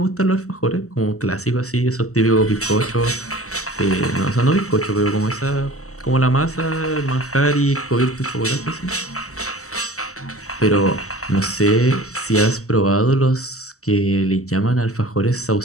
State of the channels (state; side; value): late; right; 0.65 ms